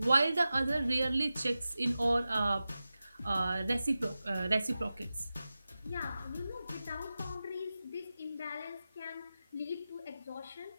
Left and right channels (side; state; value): both; inverted; correlation -0.94